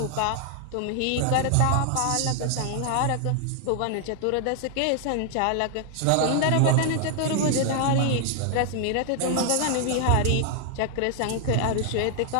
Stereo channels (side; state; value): both; different; correlation 0.00